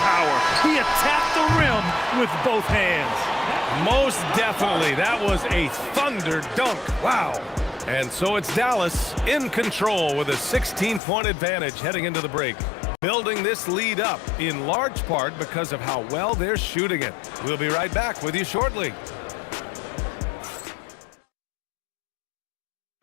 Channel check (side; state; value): right; drops out; at 11.0 s